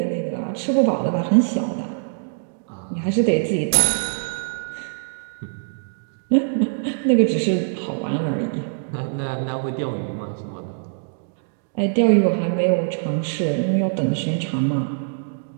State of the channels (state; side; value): silent; left; digital silence